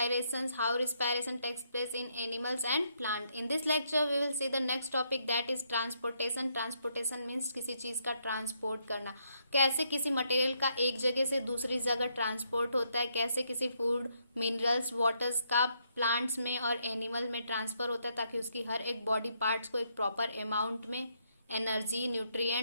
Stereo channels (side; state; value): both; inverted; correlation -0.75